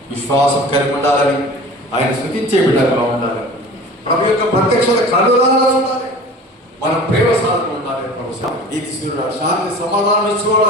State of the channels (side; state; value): both; normal; correlation 0.41